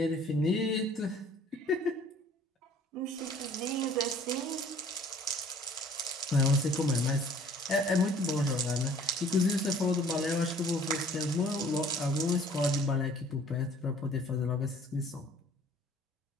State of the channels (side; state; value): both; normal; correlation 0.54